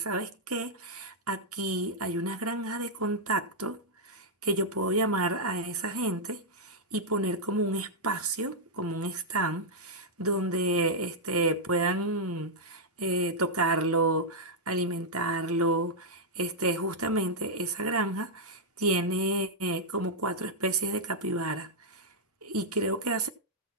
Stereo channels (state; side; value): normal; both; correlation -0.06